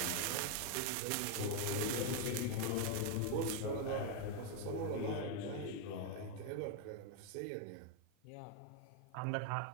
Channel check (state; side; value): different; both; correlation 0.01